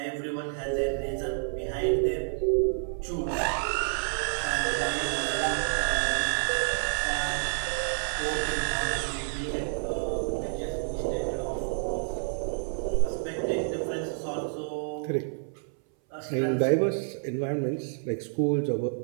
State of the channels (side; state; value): left; silent; 59 dB below the other